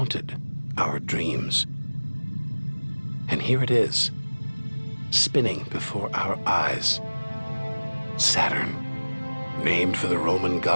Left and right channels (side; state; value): both; inverted; correlation -1.00